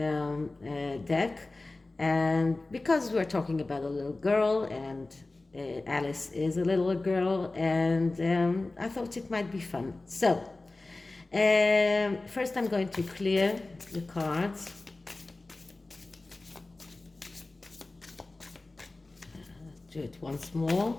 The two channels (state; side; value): quieter; right; 3.1 dB